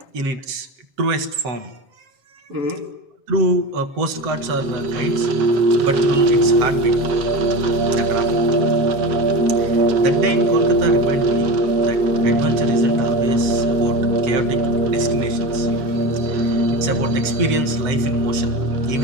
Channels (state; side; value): late; left; 7.5 ms